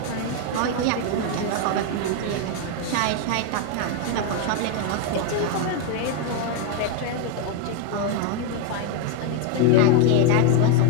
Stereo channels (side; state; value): both; different; correlation 0.01